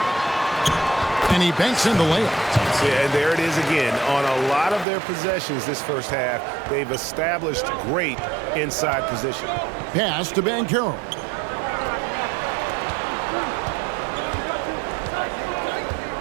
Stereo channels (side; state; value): left; drops out; at 4.9 s